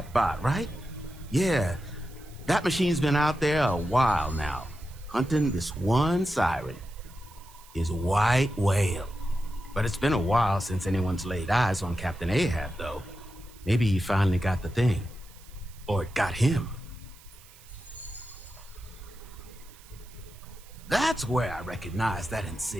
bot, right? Yeah, that machine's been out there a while now, hunting this one siren, his white whale. But it's been a while since anyone's laid eyes on Captain Ahab, though. Maybe he finally got the thing. Or it got him. That's where I recognize that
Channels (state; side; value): noise; right; hiss, 23 dB below the sound